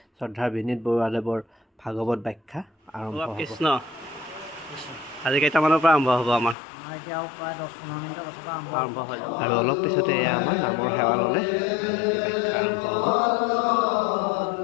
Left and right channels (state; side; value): drops out; right; at 6.6 s